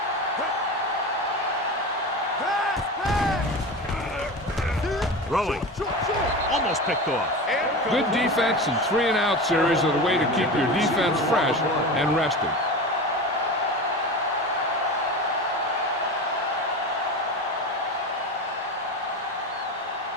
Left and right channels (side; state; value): both; normal; correlation 0.27